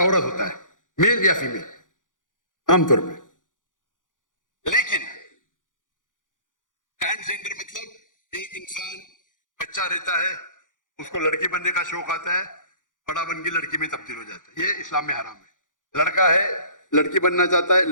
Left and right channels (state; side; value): late; right; 0.88 ms